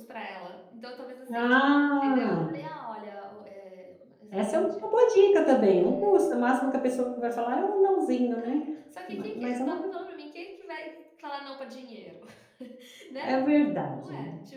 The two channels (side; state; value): both; identical; correlation 1.00